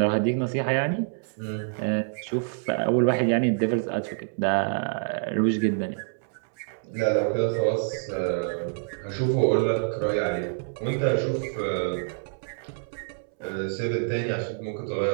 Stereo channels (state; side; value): silent; left; 60 dB below the other